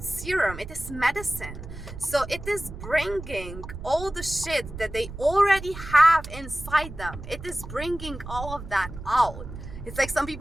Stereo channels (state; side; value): noise; right; rumble, 11 dB below the sound